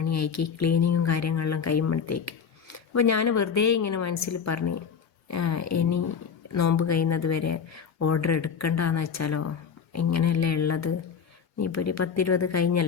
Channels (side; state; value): right; quieter; 6.6 dB